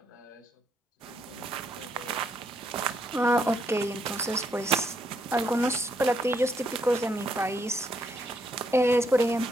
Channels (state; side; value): normal; both; correlation 0.75